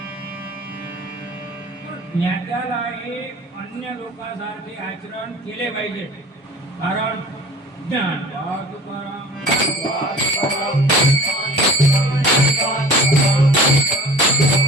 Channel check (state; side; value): normal; both; correlation 0.44